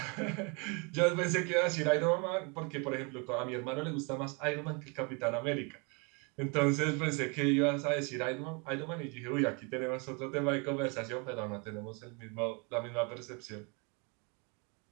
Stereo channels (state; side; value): quieter; left; 32.4 dB